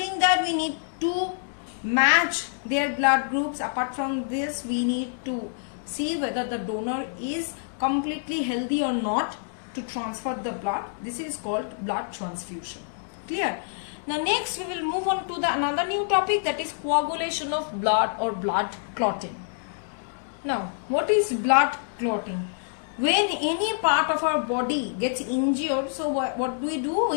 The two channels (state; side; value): silent; right; digital silence